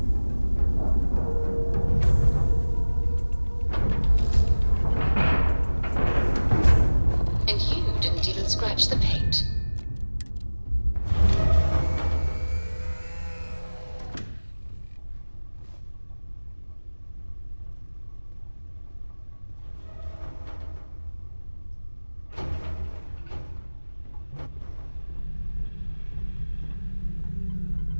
And you didn't even scratch the paint.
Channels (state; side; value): inverted; both; correlation -1.00